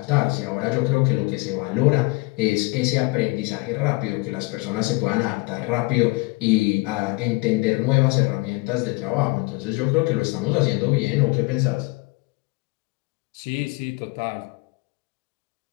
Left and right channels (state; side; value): quieter; right; 25.1 dB